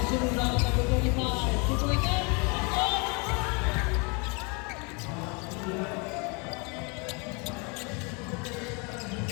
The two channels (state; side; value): quieter; right; 32.0 dB